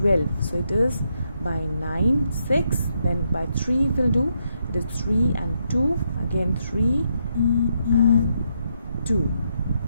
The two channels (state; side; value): inverted; both; correlation -0.79